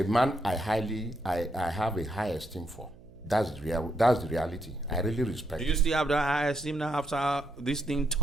man I have a high esteem for. That's the reality. I really respect. Do you still have the high esteem now after this thing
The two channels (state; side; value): noise; right; hum, 23 dB below the sound